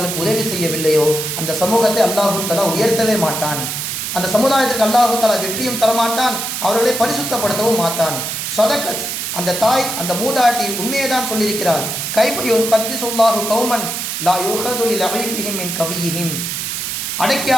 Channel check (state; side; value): noise; right; hiss, 3 dB below the sound